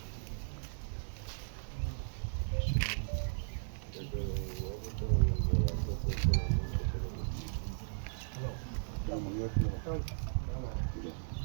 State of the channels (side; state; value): left; silent; digital silence